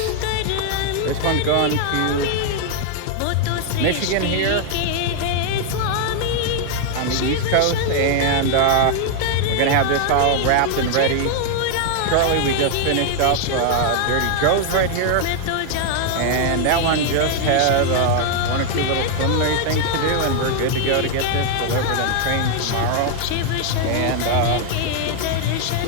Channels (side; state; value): both; different; correlation 0.00